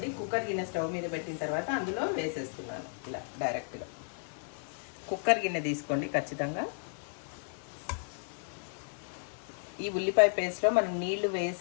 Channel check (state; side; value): silent; right; digital silence